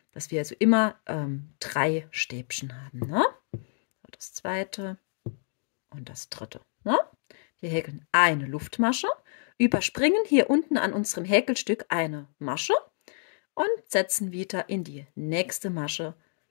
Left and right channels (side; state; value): right; silent; 59 dB below the other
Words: dass wir also immer 3 Stäbchen haben. Ne? So, das zweite und das dritte. Ne? Wir häkeln eine Luftmasche, überspringen hier unten an unserem Häkelstück eine Masche und setzen wieder in die nächste Masche